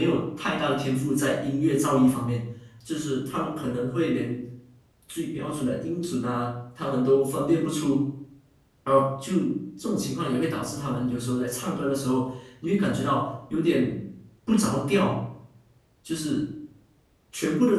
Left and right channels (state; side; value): identical; both; correlation 1.00